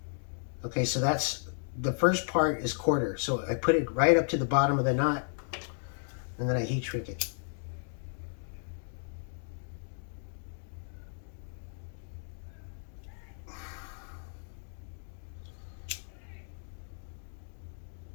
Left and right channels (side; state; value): right; silent; digital silence